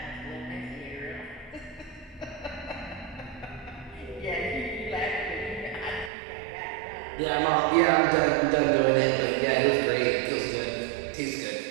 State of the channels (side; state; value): left; drops out; at 6.1 s